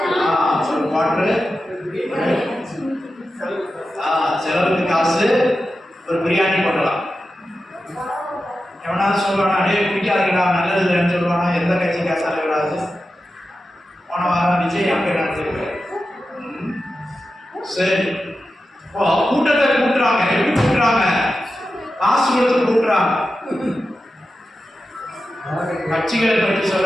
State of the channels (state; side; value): normal; both; correlation 0.91